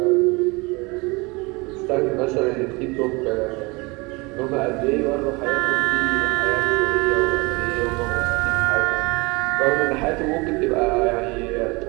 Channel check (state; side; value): quieter; left; 26.0 dB